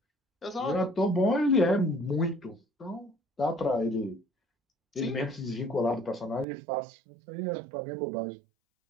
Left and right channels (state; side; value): drops out; left; at 6.5 s